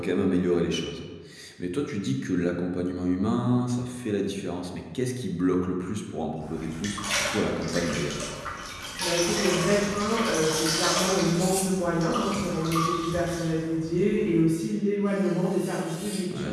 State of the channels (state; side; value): identical; both; correlation 1.00